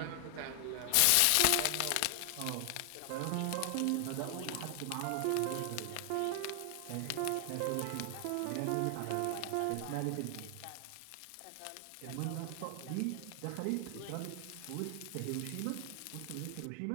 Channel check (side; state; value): both; different; correlation 0.00